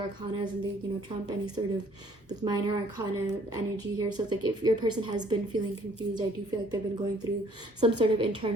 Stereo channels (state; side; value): normal; both; correlation 0.60